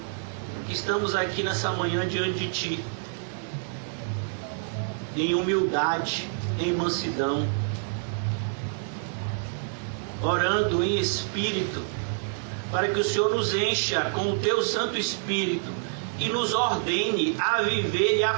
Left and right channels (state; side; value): silent; left; digital silence